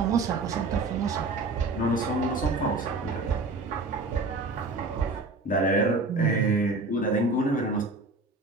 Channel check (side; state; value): left; quieter; 3.4 dB